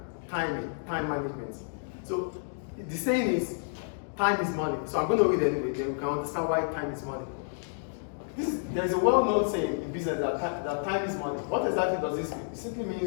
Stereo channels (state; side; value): silent; right; digital silence